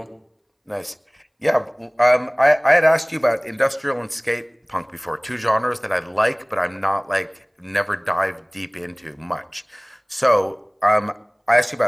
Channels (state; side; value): identical; both; correlation 1.00